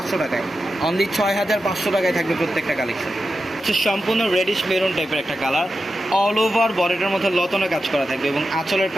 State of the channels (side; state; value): both; normal; correlation 0.90